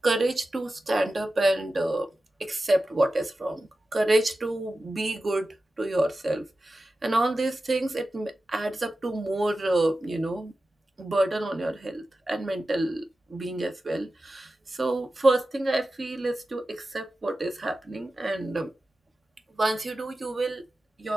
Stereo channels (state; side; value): normal; both; correlation 0.93